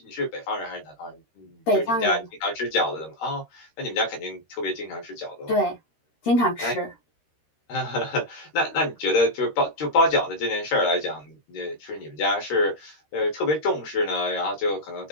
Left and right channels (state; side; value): late; right; 13 ms